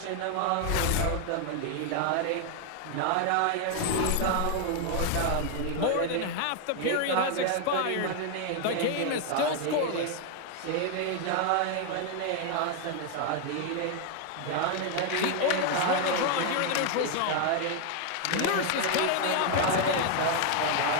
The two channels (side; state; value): both; different; correlation 0.00